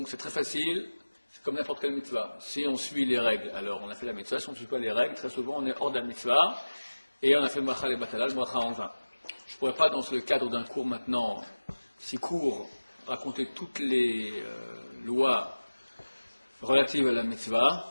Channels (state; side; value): inverted; both; correlation -1.00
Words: c'est très facile, c'est comme n'importe quelle mitzvah. Si on suit les règles, alors on a fait la mitzvah, si on ne suit pas les règles, très souvent on est hors de la mitzvah, et on a fait le bachal et batal, le bracha en vin. Je ne pourrais pas, dans le cadre d'un cours maintenant si court, raconter toutes les lois relatives à la mitzvah